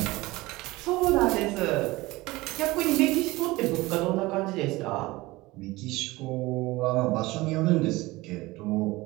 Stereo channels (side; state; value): left; quieter; 20.5 dB